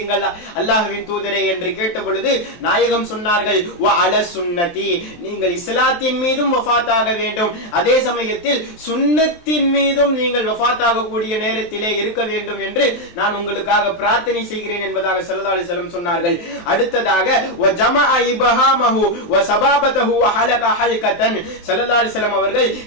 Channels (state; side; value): late; right; 23 ms